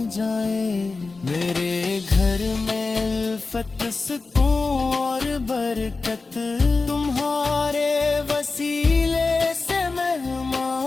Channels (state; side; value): quieter; right; 3.9 dB